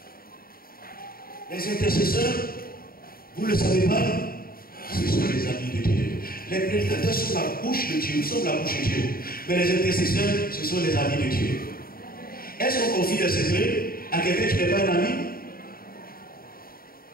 Les intercesseurs, vous ne le savez pas, ce sont les amis de Dieu. Les prédicateurs sont la bouche de Dieu, nous sommes la bouche de Dieu. Mais les intercesseurs, ce sont les amis de Dieu. Est-ce qu'on confie des secrets à quelqu'un qui n'est pas un ami?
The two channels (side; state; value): right; late; 0.43 ms